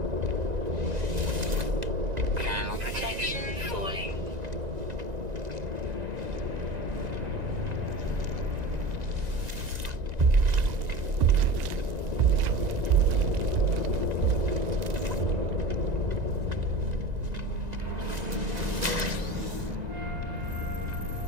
Thermal protection falling.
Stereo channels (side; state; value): left; late; 1.9 ms